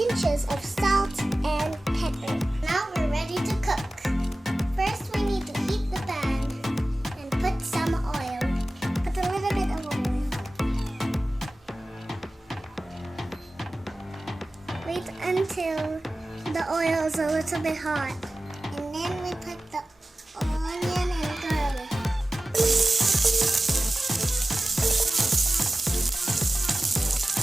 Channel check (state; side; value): normal; both; correlation 0.96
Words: of salt and pepper. Now we're ready to cook. First we need to heat the pan and put some oil. Put a little bit of oil. Wait until the oil is a little bit hot. And then we put the onion and garlic.